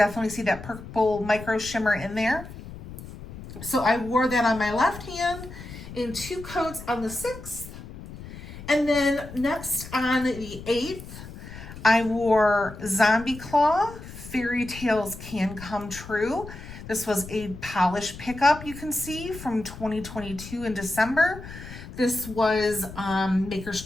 see that purple micro shimmer in there. So I wore that on my left hand in 2 coats on the 6th. And then next on the 8th, I wore Zombie Claw Fairy Tales Can Come True. This was a polish pickup, you can see, from 2022 in December. This was Maker's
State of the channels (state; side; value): noise; left; rumble, 13 dB below the sound